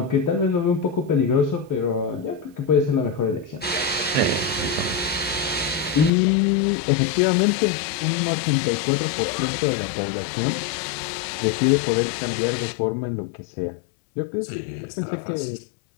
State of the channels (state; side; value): drops out; right; at 6.1 s